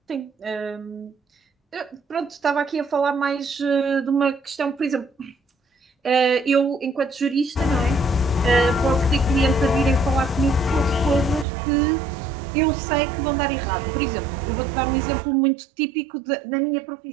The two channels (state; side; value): drops out; left; at 11.5 s